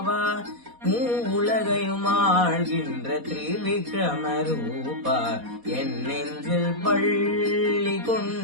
உலகையும் ஆழ்கின்ற திரிவிக்ரம ரூபா என் நெஞ்சில் பள்ளி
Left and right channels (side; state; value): left; late; 4.1 ms